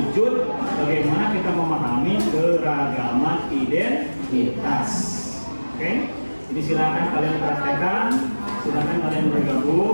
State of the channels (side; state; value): both; inverted; correlation -1.00